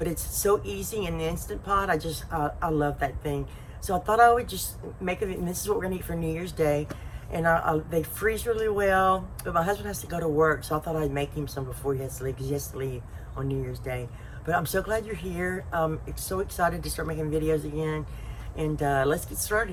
it's so easy in the Instant Pot. I love that thing. So I thought I would just make it, and this is what we're gonna eat for New Year's Day. And they freeze really well, but my husband has to go to work, so I thought I'd make him some before he has to leave, because he has to leave on New Year's Day. But I'm so glad you're here. So excited to start making videos again. And let's get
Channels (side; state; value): both; identical; correlation 1.00